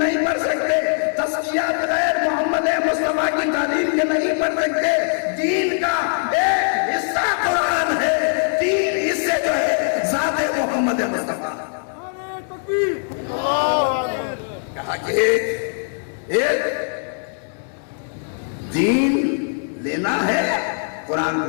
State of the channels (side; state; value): right; silent; 65 dB below the other